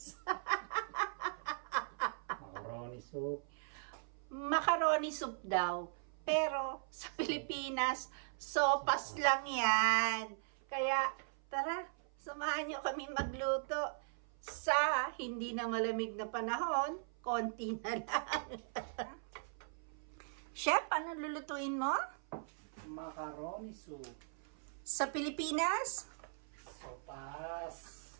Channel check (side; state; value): left; silent; 51 dB below the other